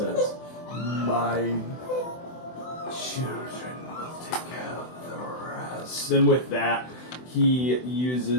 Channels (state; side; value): late; right; 24 ms